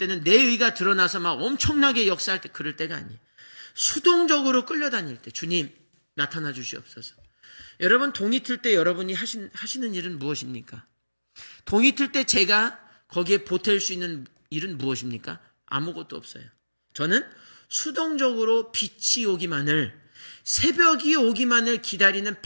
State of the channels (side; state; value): both; inverted; correlation -1.00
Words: 내 의가 드러나서 막 엄청나게 역사할 때 그럴 때가 아니에요. 수동적으로 끌려다닐 때 주님 나타나 주시옵소서. 여러분 동이 틀 때 여러분이 하시는 일은 무엇입니까? 동이 틀 때 제가 거기에 보탤 수 있는 일은 무엇입니까? 아무것도 없어요. 저는 수동적으로 빛이 오기만을 새벽이 오기만을 기다리는